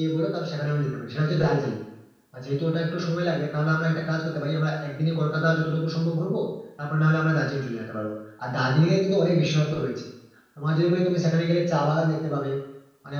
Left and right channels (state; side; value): identical; both; correlation 1.00